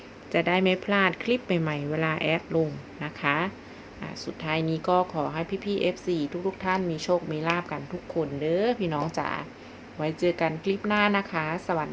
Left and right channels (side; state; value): both; identical; correlation 1.00